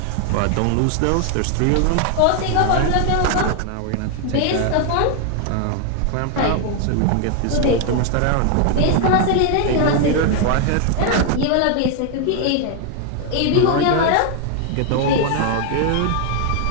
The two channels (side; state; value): both; different; correlation 0.00